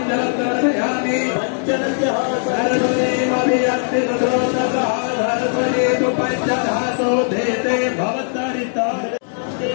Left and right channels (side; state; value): right; silent; 65 dB below the other